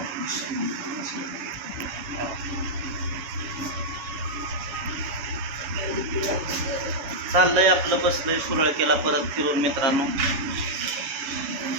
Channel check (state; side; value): late; left; 7.2 ms